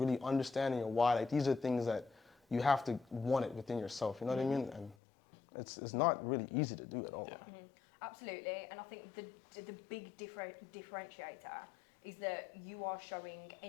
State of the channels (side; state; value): right; drops out; at 5.0 s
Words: understanding your why. Like, these are things that you have to want it within yourself, you know what I mean? And it's not really easy to do at all. Yeah. Absolutely. And I think the big differentiator is that you are showing